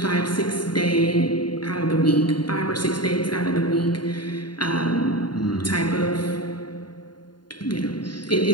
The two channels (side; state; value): right; late; 0.71 ms